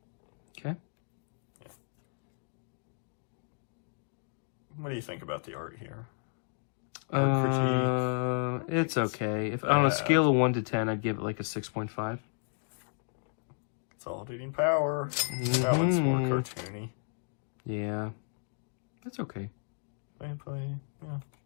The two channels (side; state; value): right; silent; digital silence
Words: Okay. Yeah. What do you think about the art here? Art critique? It's okay. If on a scale of 1 to 10, I'd give it like a 6.5. Consolidating power. Now it's more cartoony. Yeah. That's okay. Play. Yeah.